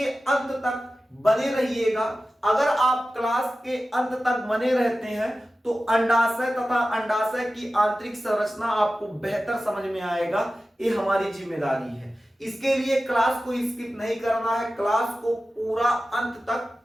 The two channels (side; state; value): both; normal; correlation 0.95